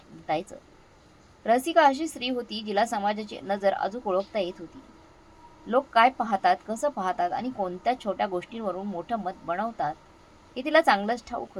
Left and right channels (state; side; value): identical; both; correlation 1.00